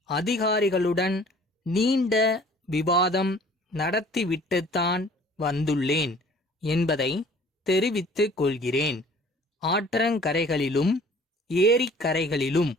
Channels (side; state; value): both; normal; correlation 0.51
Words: அதிகாரிகளுடன் நீண்ட விவாதம் நடத்திவிட்டுத்தான் வந்துள்ளேன் என்பதை தெரிவித்துக் கொள்கிறேன். ஆற்றங்கரைகளிலும் ஏரிக்கரைகளிலும்